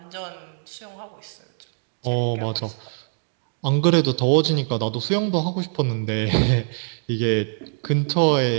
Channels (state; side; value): silent; left; digital silence